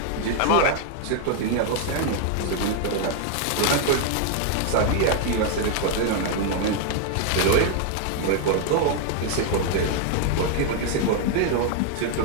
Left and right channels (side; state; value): both; different; correlation 0.00